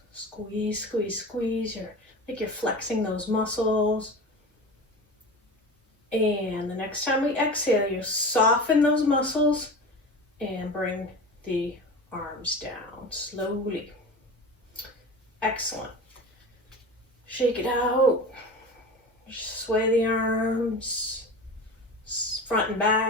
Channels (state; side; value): normal; both; correlation 0.32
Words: Squeeze, squeeze, squeeze. Like you're flexing those muscles. And the next time we exhale, you soften those muscles and bring the arms down slowly. Excellent. Shake it out. Sway the arms, front and